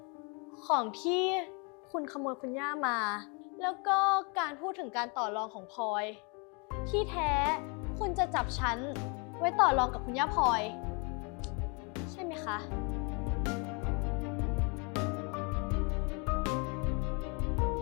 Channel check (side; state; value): right; quieter; 33.2 dB